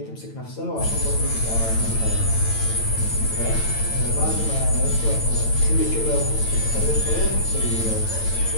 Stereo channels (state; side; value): late; right; 9.0 ms